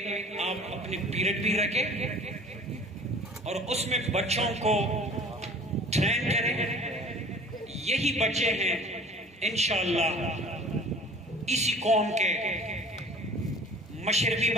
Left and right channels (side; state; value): both; normal; correlation 0.47